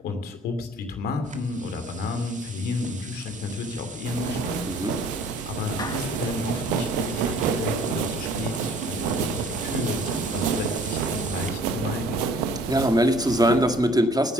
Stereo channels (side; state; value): both; normal; correlation 0.54